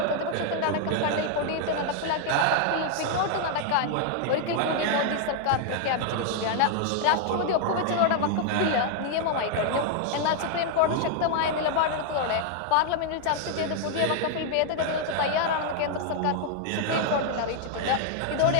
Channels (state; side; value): different; both; correlation 0.00